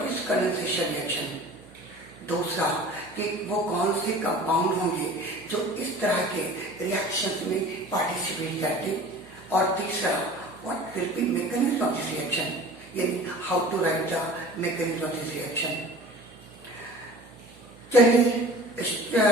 इज कंडेंसेशन रिएक्शन, दूसरा कि वो कौन से कंपाउंड होंगे जो इस तरह के रिएक्शन में पार्टिसिपेट करते, और तीसरा what will be mechanism of this reaction, यानी how to write the mechanism of this reaction। चलिए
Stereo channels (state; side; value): noise; right; hum, 22 dB below the sound